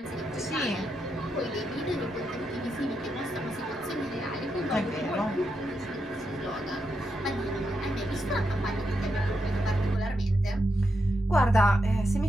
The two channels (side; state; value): both; normal; correlation 0.84